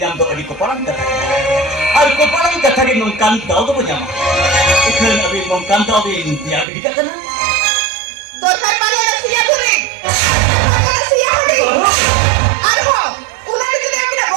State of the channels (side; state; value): left; drops out; at 6.7 s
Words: jam do adi ko parang katha. Ar ko parang katha ge nongkan daw do panyama. Ikhan abi nongkan daw de dia bidika kana. Dorkar pada siya guri. Siya guri. Arho, ular itu dia tidak